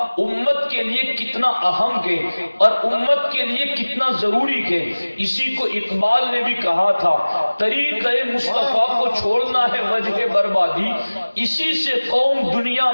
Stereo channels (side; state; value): both; inverted; correlation -1.00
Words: امت کے لیے کتنا اہم ہے اور امت کے لیے کتنا ضروری ہے۔ اسی کو اقبال نے بھی کہا تھا، طریقہ مصطفیٰ کو چھوڑنا ہے وجہ بربادی، اسی سے قوم دنیا